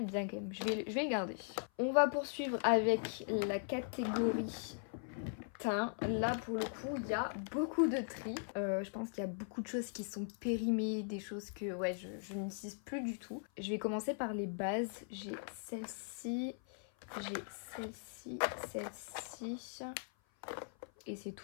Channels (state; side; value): silent; right; 51 dB below the other